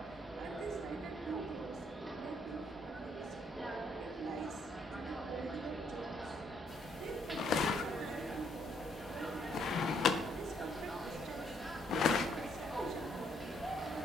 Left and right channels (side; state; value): both; normal; correlation 0.70